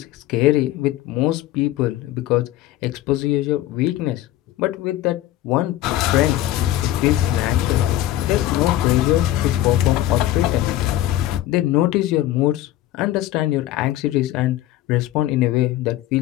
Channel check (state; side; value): quieter; right; 14.2 dB